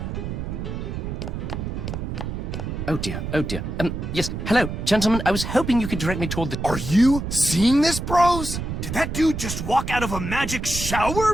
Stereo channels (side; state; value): right; noise; rumble, 5 dB below the sound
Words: Oh dear, oh dear. Yes, hello, gentlemen. I was hoping you could direct me toward the... Are you seeing this, bros? Did that dude just walk out of a magic shower,